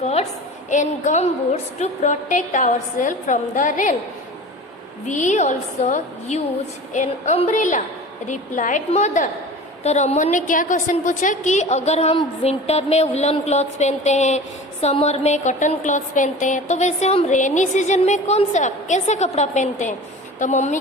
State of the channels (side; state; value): both; normal; correlation 0.37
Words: and gumboots to protect ourselves from the rain. We also use an umbrella, replied mother. तो रमन ने क्या क्वेश्चन पूछा कि अगर हम विंटर में वुलन क्लॉथ्स पहनते हैं, समर में कॉटन क्लॉथ्स पहनते हैं, तो वैसे हम रेनी सीजन में कौन सा कैसे कपड़ा पहनते हैं. तो मम्मी